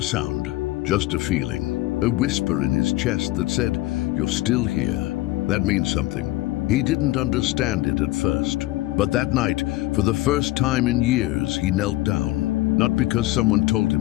sound, just a feeling. A whisper in his chest that said, "You're still here." That means something. He didn't understand it at first. But that night, for the first time in years, he knelt down. Not because someone told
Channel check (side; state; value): right; quieter; 17.9 dB